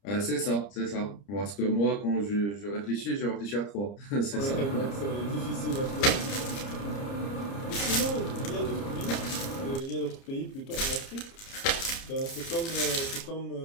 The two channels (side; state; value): right; late; 30 ms